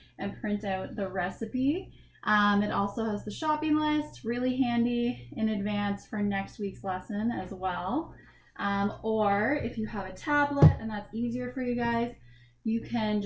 and print out the recipe. It also has the shopping list, really handy in advance for next week's lesson as well. Or if you have a tablet and that's easier for you guys, you can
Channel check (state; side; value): identical; both; correlation 1.00